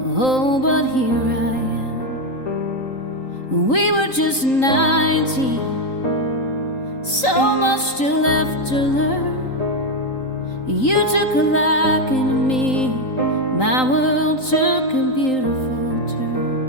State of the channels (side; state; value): right; late; 3.8 ms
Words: Oh, but here I am. We were just 19, so much still left to learn. You took a liking to me, my world took a beautiful